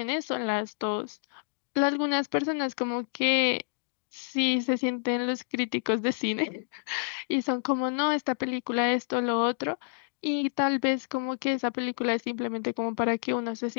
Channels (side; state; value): right; silent; digital silence